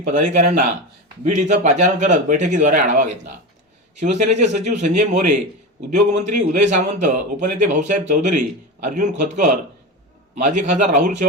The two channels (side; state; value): both; normal; correlation 0.22